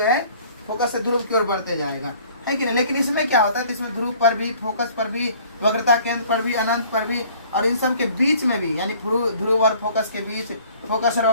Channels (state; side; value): inverted; both; correlation -0.54